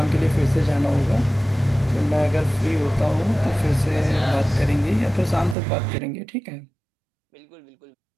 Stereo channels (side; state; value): left; drops out; at 5.6 s